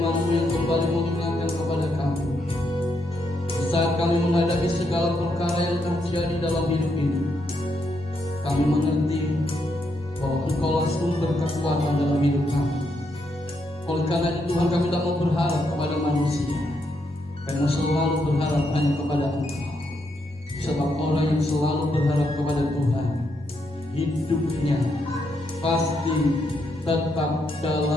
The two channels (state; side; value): normal; both; correlation 0.79